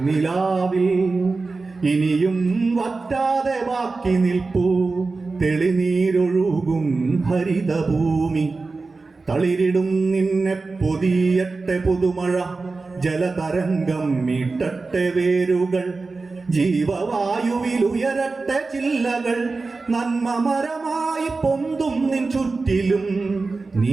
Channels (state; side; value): quieter; left; 3.9 dB